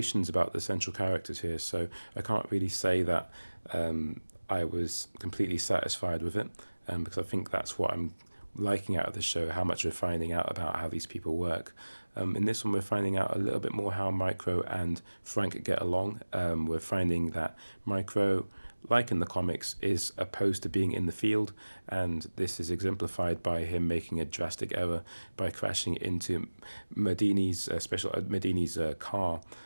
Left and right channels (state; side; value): inverted; both; correlation -1.00